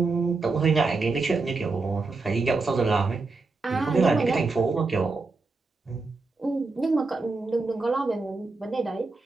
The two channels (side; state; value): left; quieter; 3.8 dB